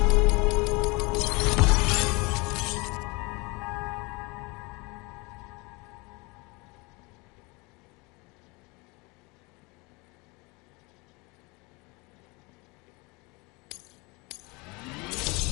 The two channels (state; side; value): quieter; right; 26.7 dB